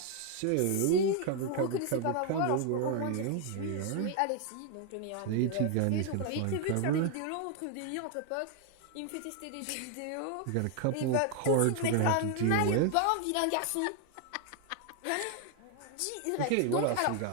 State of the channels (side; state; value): both; different; correlation 0.00